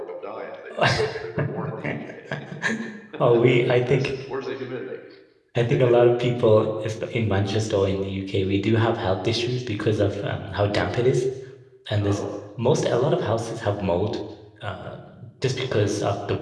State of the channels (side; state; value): both; identical; correlation 1.00